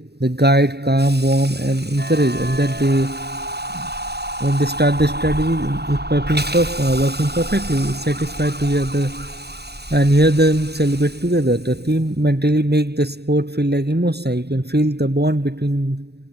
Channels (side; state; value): left; late; 0.48 ms